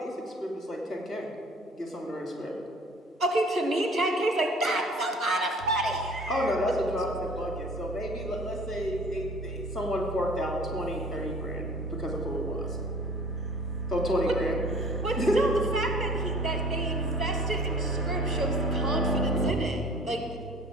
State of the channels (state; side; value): normal; both; correlation 0.48